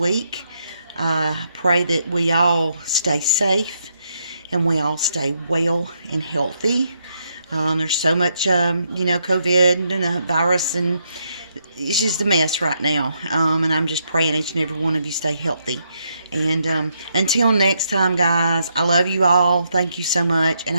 Pray that we all stay safe and we all stay well and healthy. There's so much, COVID and the virus, and it's just a mess right now. And I'm just praying each and every one of you stay healthy. And until next time, guys, I love you all. Thank you so much. And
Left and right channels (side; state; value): both; inverted; correlation -0.77